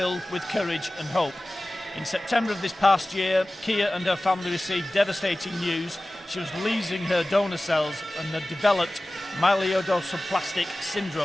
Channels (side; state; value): both; normal; correlation 0.97